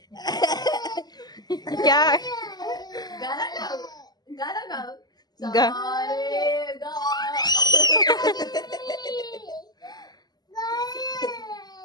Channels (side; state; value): right; late; 0.20 ms